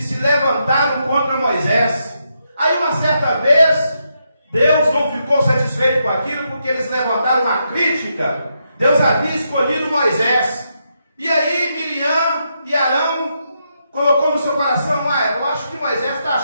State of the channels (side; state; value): both; inverted; correlation -0.81